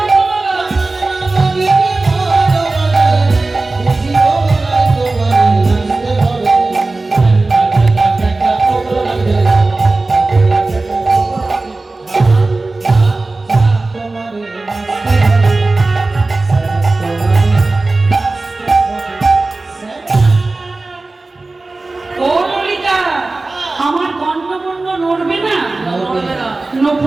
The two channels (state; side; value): quieter; left; 3.3 dB